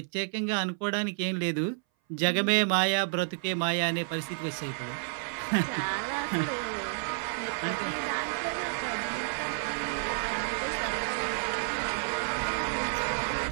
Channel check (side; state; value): left; silent; 58 dB below the other